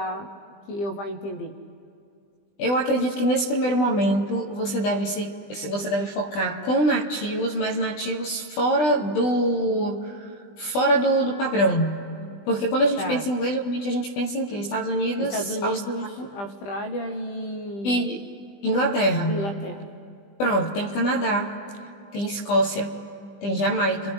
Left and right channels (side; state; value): right; late; 20 ms